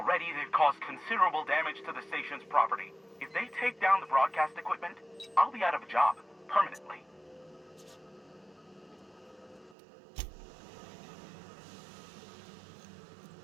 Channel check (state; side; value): drops out; left; at 9.8 s